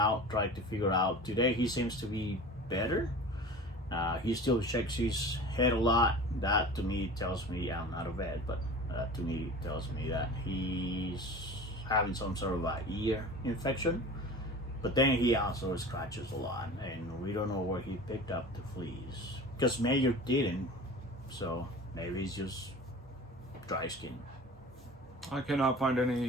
try to figure out. Today he seems to be better. He still shakes his head a lot. That to me tells me, I'm not a vet, but to me tells me that he's having some sort of an ear infection. But then he also scratches a lot, and we don't know where he picked up the fleas. Because Major didn't, so maybe it's just dry skin. I cannot find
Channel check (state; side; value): normal; both; correlation 0.37